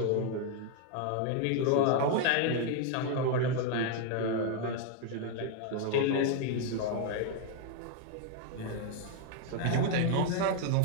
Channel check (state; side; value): different; both; correlation 0.00